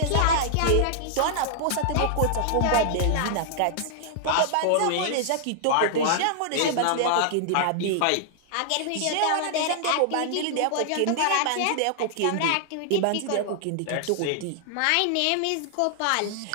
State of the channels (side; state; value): both; different; correlation -0.01